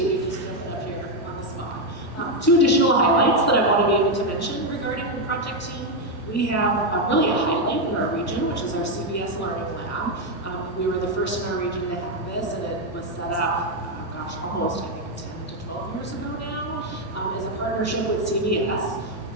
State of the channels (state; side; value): normal; both; correlation 0.04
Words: you just jumping up here on the spot. Two additional highlights that I want to be able to mention regarding the project team. We have really a highlight in our region, which is our CBS Learning Lab. We were the first in our region to have this, and it was set up, almost, I think, 10 to 12 years ago now, as a partnership with CBS.